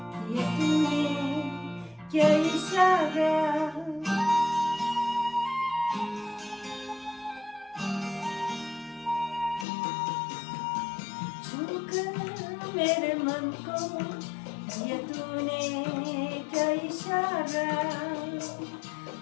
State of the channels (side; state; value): right; drops out; at 9.7 s